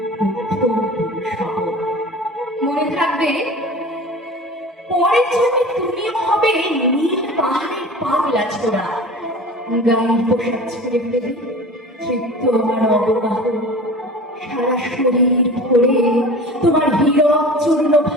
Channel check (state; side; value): normal; both; correlation 0.38